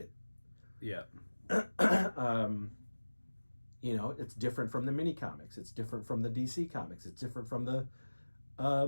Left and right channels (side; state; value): both; inverted; correlation -1.00